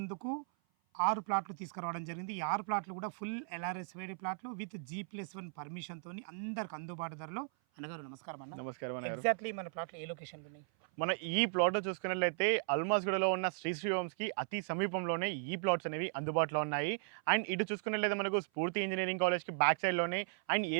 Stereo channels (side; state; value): left; silent; 53 dB below the other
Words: 6 ప్లాట్లు తీసుకురావడం జరిగింది. ఈ 6 ప్లాట్లు కూడా ఫుల్ ఎల్ఆర్ఎస్-వేడి ప్లాట్లు విత్ G+1 పర్మిషన్‌తోని అందరికి అందుబాటు ధరలో. అన్నగారు నమస్కారం అన్న. నమస్కారం అన్నగారు. ఎగ్జాక్ట్‌లీ మన ప్లాట్లు ఏ లొకేషన్‌లో ఉన్నాయి? మన ఈ ప్లాట్‌లో చూసుకున్నట్లయితే అల్మాస్గూడలో ఉన్న శ్రీ హోమ్స్‌కి అతి సమీపంలోనే ఈ ప్లాట్స్ అనేవి అందుబాటులో ఉన్నాయి. అండ్ ఇటు చూసుకున్నట్లయితే మనకు స్ఫూర్తి ఇంజినీరింగ్ కాలేజ్‌కి బ్యాక్ సైడ్‌లోనే అండ్